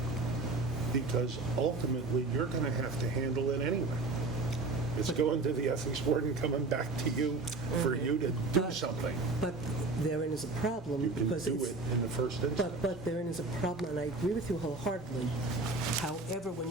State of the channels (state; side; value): quieter; left; 3.5 dB